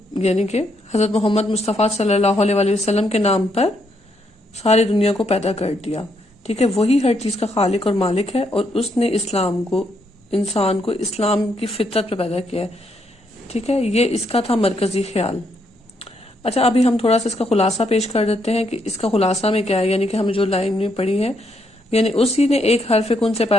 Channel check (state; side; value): normal; both; correlation 0.76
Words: یعنی کہ حضرت محمد مصطفیٰ صلی اللہ علیہ وآلہ وسلم کے نام پر ساری دنیا کو پیدا کر دیا. ٹھیک ہے، وہی ہر چیز کا خالق اور مالک ہے، اور اس نے انسان کو اسلام کی فطرت پہ پیدا کیا ہے. ٹھیک ہے، یہ اس کا تھا مرکزی خیال. اچھا، ابھی ہم تھوڑا سا اس کا خلاصہ پیش کر دیتے ہیں کہ اس کا خلاصہ میں کیا ہے. یعنی کہ ہم جو لائن میں پڑھی ہے، یعنی اسی نے ایک حرف کن سے